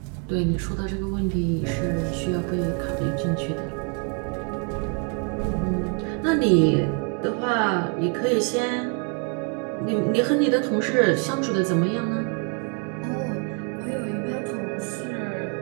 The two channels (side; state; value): left; quieter; 37.4 dB